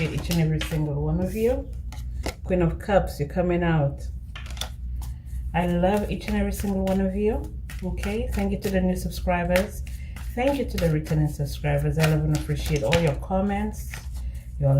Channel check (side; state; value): both; identical; correlation 1.00